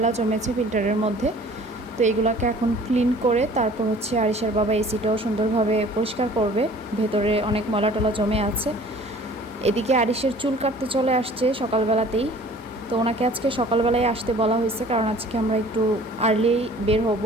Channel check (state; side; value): normal; both; correlation 0.50